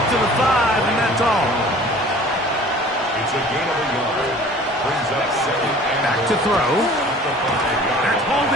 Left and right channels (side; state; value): both; normal; correlation 0.47